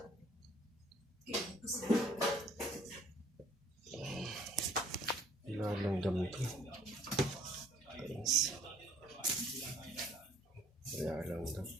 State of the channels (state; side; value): normal; both; correlation 0.58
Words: Kaya gusto ko. Ilalanggam to. Guys. Ilalanggam.